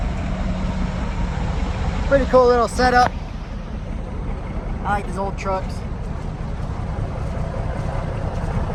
pretty cool little setup. I like these old trucks.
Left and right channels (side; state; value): both; identical; correlation 1.00